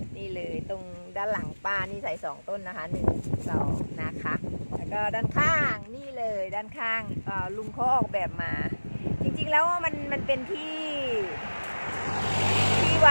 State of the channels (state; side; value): inverted; both; correlation -1.00